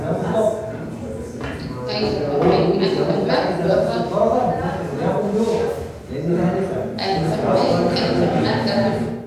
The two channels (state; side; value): identical; both; correlation 1.00